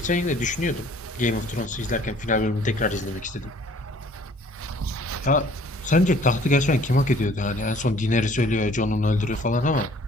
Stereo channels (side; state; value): both; normal; correlation 0.55